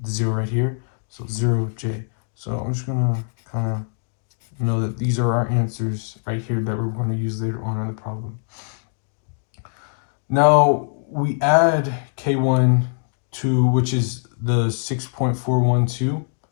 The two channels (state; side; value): silent; right; 64 dB below the other